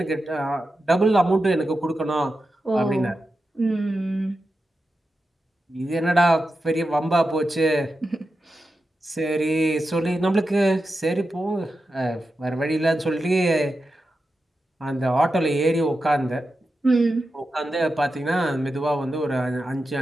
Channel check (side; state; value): both; normal; correlation 0.90